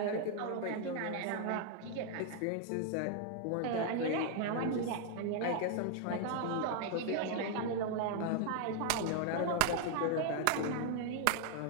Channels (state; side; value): different; both; correlation 0.00